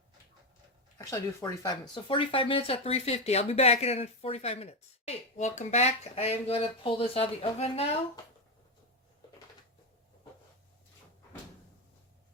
actually I do 45 minutes. So 45 minutes at 350. I'll be back in 45 minutes. Hey, welcome back. I am going to pull this out of the oven now.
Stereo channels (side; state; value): both; normal; correlation 0.11